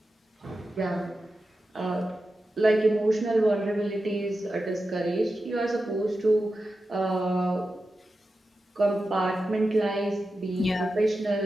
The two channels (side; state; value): both; normal; correlation 0.91